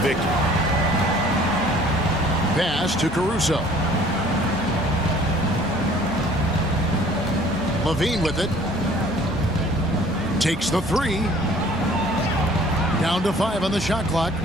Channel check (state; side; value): normal; both; correlation 0.53